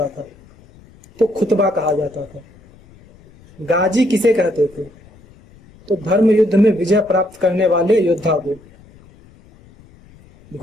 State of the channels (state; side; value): noise; left; rumble, 26 dB below the sound